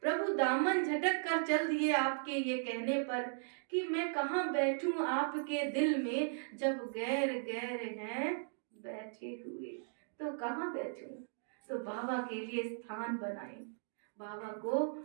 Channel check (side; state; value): left; silent; digital silence